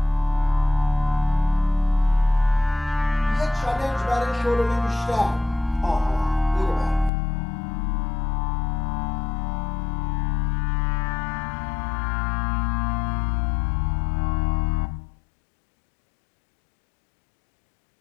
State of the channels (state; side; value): drops out; right; at 7.1 s